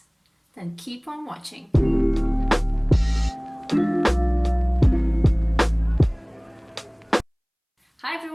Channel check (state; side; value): identical; both; correlation 1.00